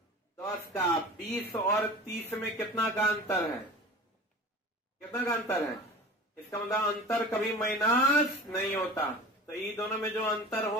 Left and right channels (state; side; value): normal; both; correlation 0.37